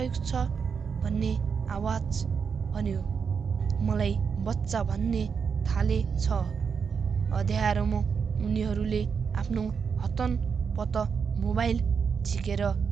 छ भन्ने आवाज भन्यो। मलाई बच्चा भन्ने थालेछ। अँध्यारोमा उनीहरूले आफ्नो हतनपत मोबाइल झिकेर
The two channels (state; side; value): quieter; left; 6.2 dB